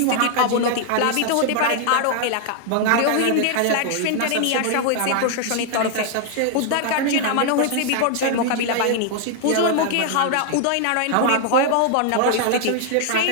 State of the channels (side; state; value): both; different; correlation 0.00